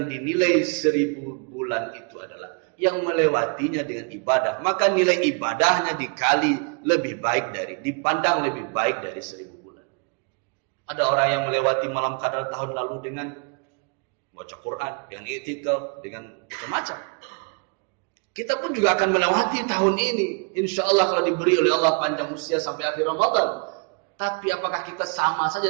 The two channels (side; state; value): left; quieter; 34.5 dB